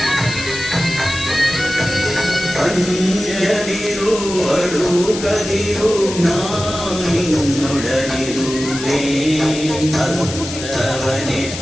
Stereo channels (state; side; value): noise; left; hiss, 9 dB below the sound